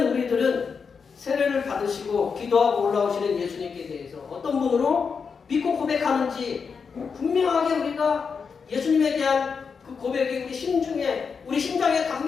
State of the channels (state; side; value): quieter; right; 5.7 dB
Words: 우리들은 세례를 받으시고 기도하고 올라오시는 예수님께 대해서 어떤 분으로 믿고 고백하는지 분명하게 우리가 예수님에 대한 그 고백이 우리 심장에